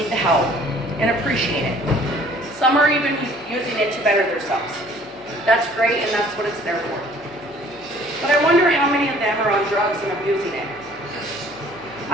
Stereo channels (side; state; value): both; normal; correlation 0.55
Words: the help and appreciate it. Some are even using it to better themselves. That's great, and that's what it's there for. But I wonder how many of them are on drugs and abusing it.